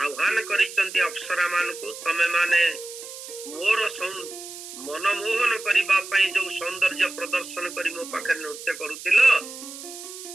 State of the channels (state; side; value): noise; right; hiss, 12 dB below the sound